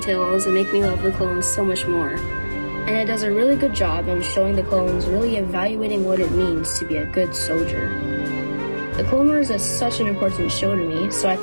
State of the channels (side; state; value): both; inverted; correlation -1.00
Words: that make me love the clones so much more. And it does a really good job in showing the clones really evaluating what it means to be a good soldier. The Clone Wars is such an important show to me, so I